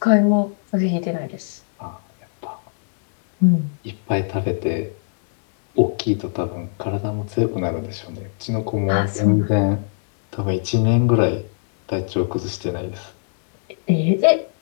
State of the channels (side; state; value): right; silent; 59 dB below the other